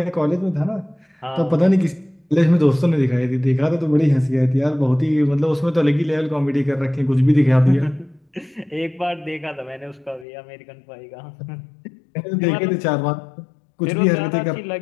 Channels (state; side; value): drops out; right; at 10.2 s